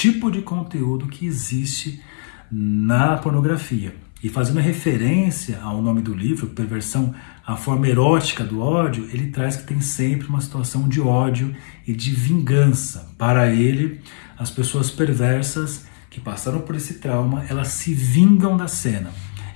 de conteúdo que existe na pornografia. E fazendo referência ao nome do livro, Perversão, a forma erótica do ódio, ele traz que tem sempre uma situação de ódio e de vingança. Para ele, as pessoas perversas que passaram por esse trauma, elas se vingam da cena.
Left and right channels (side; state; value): right; silent; 58 dB below the other